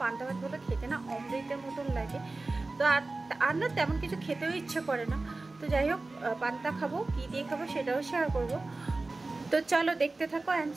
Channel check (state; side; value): quieter; left; 3.3 dB